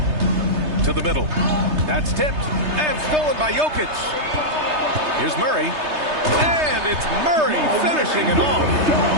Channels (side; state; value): left; late; 3.3 ms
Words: To the middle. That's tipped and stolen by Jokic. Here's Murray. And it's Murray finishing it off.